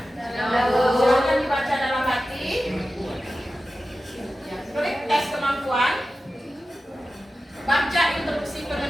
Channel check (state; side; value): normal; both; correlation 0.94